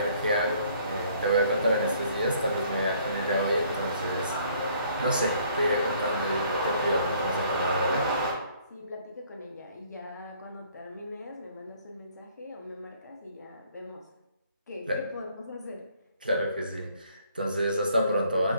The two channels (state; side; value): inverted; both; correlation -0.61